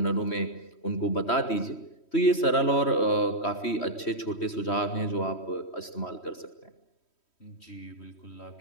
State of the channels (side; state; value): right; late; 3.1 ms